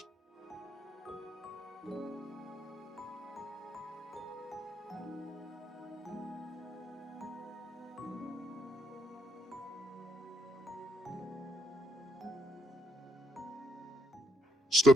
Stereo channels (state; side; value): normal; both; correlation 0.75